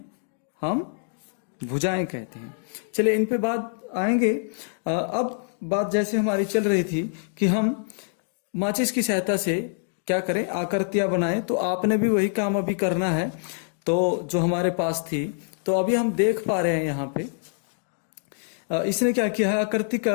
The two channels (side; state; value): right; silent; digital silence